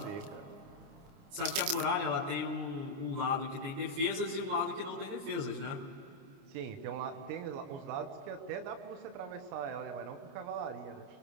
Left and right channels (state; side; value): late; left; 29 ms